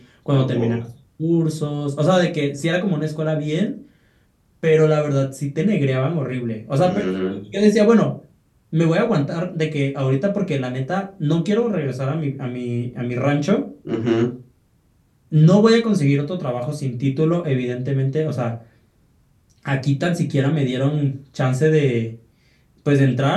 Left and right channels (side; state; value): both; identical; correlation 1.00